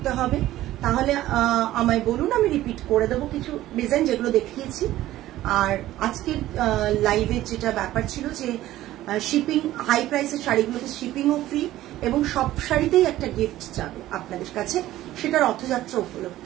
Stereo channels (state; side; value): quieter; left; 14.8 dB